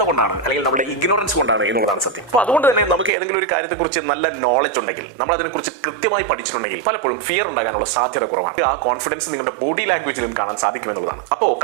കൊണ്ടാണ്, അല്ലെങ്കിൽ നമ്മുടെ ഇഗ്നോറൻസ് കൊണ്ടാണ് എന്നുള്ളതാണ് സത്യം. അപ്പൊ അതുകൊണ്ട് തന്നെ നമുക്ക് ഏതെങ്കിലും ഒരു കാര്യത്തെക്കുറിച്ച് നല്ല നോളജ് ഉണ്ടെങ്കിൽ, നമ്മൾ അതിനെക്കുറിച്ച് കൃത്യമായി പഠിച്ചിട്ടുണ്ടെങ്കിൽ പലപ്പോഴും ഫിയർ ഉണ്ടാകാനുള്ള സാധ്യത കുറവാണ്. ആ കോൺഫിഡൻസ് നിങ്ങളുടെ ബോഡി ലാംഗ്വേജിലും കാണാൻ സാധിക്കുമെന്നുള്ളതാണ്. അപ്പോൾ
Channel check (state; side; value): drops out; left; at 3.1 s